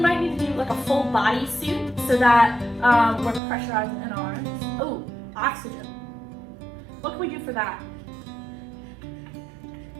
need to do like a full body suit so that we're pressurized in our arms. Oh, oxygen. What can we do for that?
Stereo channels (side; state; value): left; drops out; at 3.4 s